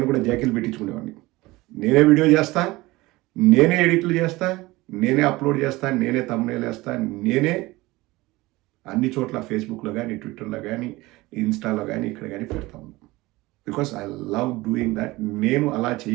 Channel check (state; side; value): quieter; left; 20.3 dB